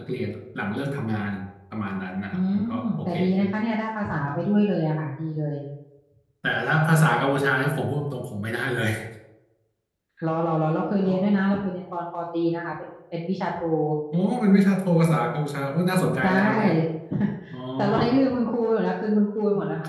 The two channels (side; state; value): both; identical; correlation 1.00